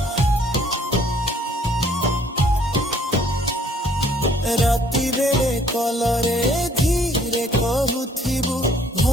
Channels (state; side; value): normal; both; correlation 0.61